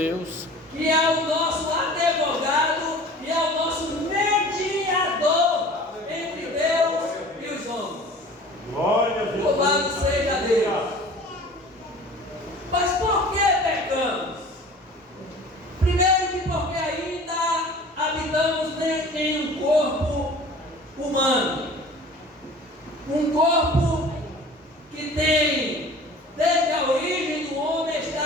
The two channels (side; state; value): both; normal; correlation 0.44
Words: Que é o nosso advogado e é o nosso mediador entre Deus e os homens. Glória a Deus. Louvado seja Deus. Mas por que pecamos? Primeiro que porque ainda habitamos em um corpo humano. Um corpo que tem, desde a origem do homem,